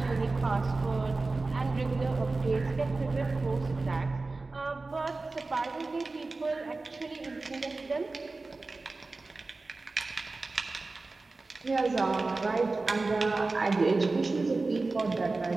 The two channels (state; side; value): quieter; left; 3.5 dB